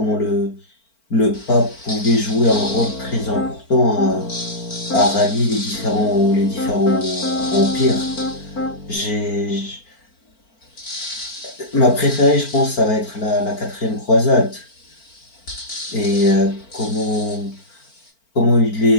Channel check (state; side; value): late; right; 4.4 ms